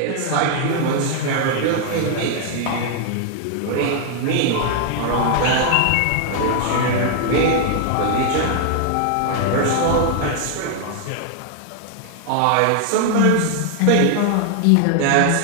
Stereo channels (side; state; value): both; different; correlation 0.00